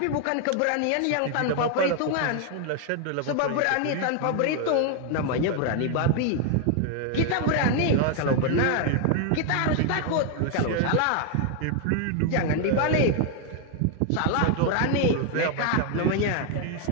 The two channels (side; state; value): both; different; correlation 0.00